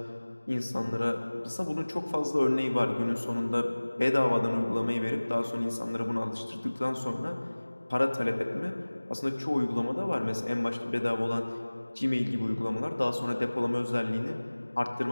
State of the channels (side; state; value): both; inverted; correlation -1.00